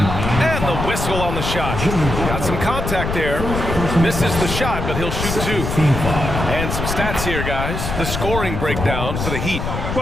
the whistle on the shot. Got some contact there. Misses the shot, but he'll shoot 2. And some stats here, guys. The scoring breakdown for the Heat.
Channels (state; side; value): noise; left; rumble, 4 dB below the sound